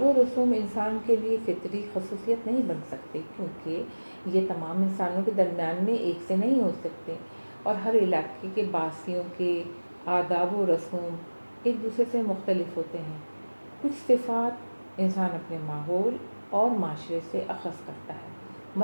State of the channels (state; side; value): inverted; both; correlation -1.00